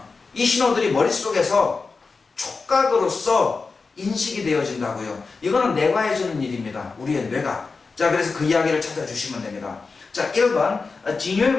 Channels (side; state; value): right; quieter; 4.4 dB